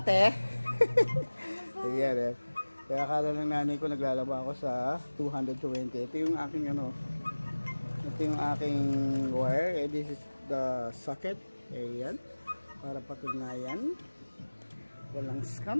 Ayan, kaya akala ng nanay ko naglalaba ako sa 220. Ito yung aking ito yung aking wire. This is the socket. Ayan, para patunayan walang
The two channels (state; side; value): inverted; both; correlation -1.00